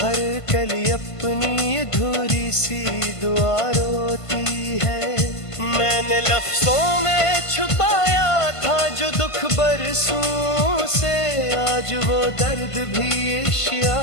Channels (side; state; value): right; late; 1.5 ms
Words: कली अपनी अधूरी सी दुआ रोती है। मैंने लफ्जों में छुपाया था जो दुख बरसों से, आज वो दर्द भी